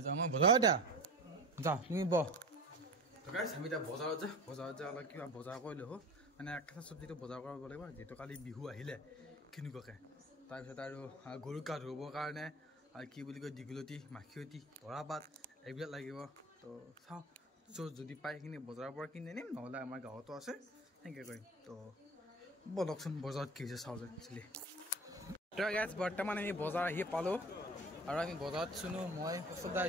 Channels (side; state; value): both; normal; correlation 0.36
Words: যাওঁ মই বজাৰত যা তুমি বহ গাইছ আমি এতিয়া বজাৰত যা অলপ কিবা বজাৰ কৰি ল'ব মানে কেঁচা চব্জিটো বজাৰ কৰিব লাগিব যিহেতু কালি বিহু আহিলে কেনেকুৱাকৈ তাৰপিছত আৰু গৰুক গা ধুবৰ কাৰণে আৰু কি বুলি কয় দীঘলতি মাখিয়তী তৰাপাত এইবিলাক লাগিব তো চাওঁ যদি পাই সেইখিনি বজাৰৰ পৰা কিনি আনিম নহ'লে আমাৰ গাঁৱতো আছে সেনেকৈ কৰিম তো বলকচোন বজাৰত কি হৈছে চাওঁ যে একচুৱেলি তো গাইছ বৰ্তমান আমি বজাৰ আহি পালোঁ আৰু আমি বজাৰত চুনো মই ওচৰতে